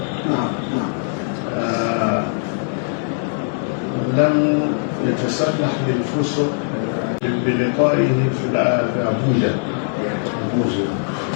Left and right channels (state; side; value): silent; right; 65 dB below the other